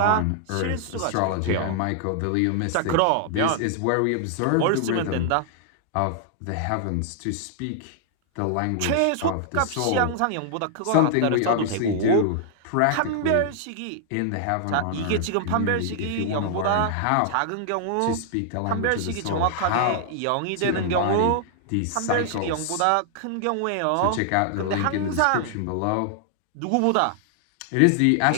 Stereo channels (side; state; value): both; different; correlation 0.00